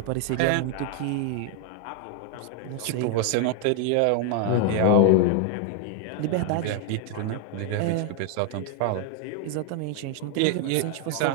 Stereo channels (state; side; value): different; both; correlation 0.00